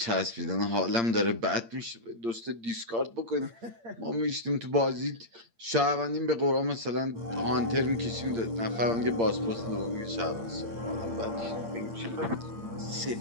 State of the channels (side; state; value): left; late; 8.7 ms